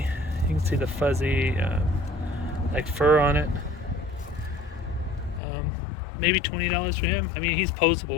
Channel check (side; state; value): right; drops out; at 5.4 s